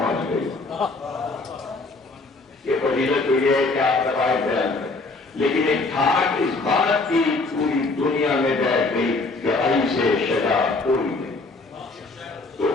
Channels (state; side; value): quieter; right; 3.5 dB